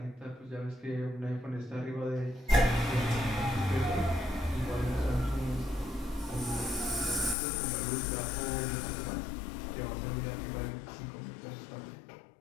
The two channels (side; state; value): right; drops out; at 7.4 s